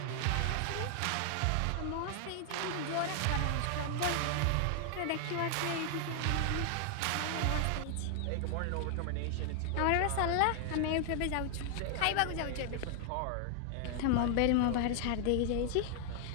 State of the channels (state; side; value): different; both; correlation 0.00